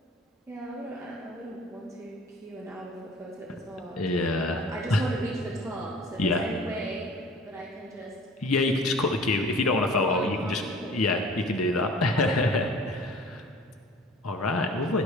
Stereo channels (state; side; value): normal; both; correlation 0.46